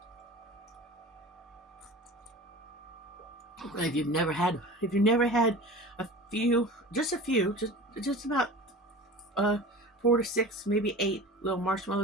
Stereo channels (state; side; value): normal; both; correlation 0.37